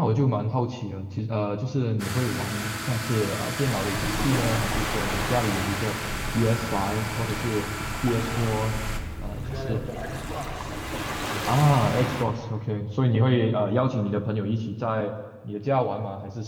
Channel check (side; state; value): both; identical; correlation 1.00